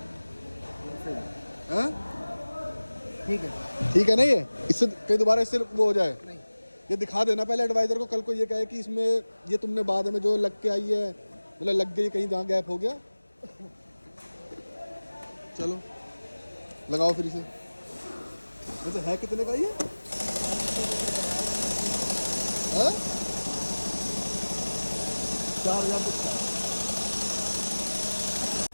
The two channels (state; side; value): inverted; both; correlation -1.00